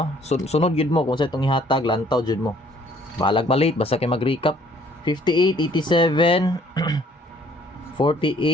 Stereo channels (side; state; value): both; normal; correlation 0.60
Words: Sunod gid mo kung sa itong ihatag, lantaw jud mo. Balag malate basta kay mag-recap. 58, 87,